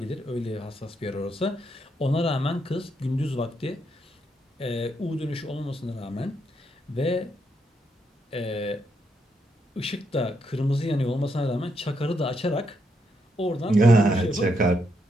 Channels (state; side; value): normal; both; correlation 0.78